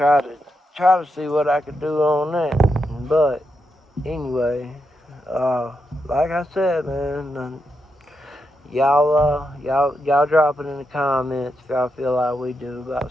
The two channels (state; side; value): normal; both; correlation 0.84